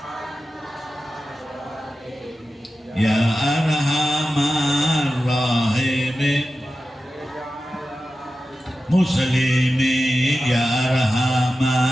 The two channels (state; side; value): normal; both; correlation 0.93